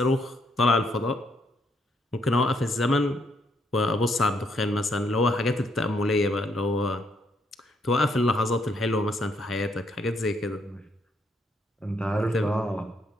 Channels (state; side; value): normal; both; correlation 0.73